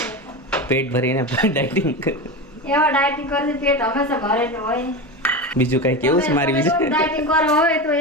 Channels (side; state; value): both; normal; correlation 0.22